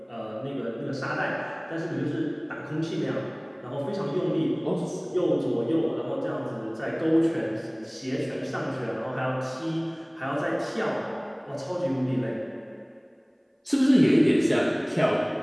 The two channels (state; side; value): identical; both; correlation 1.00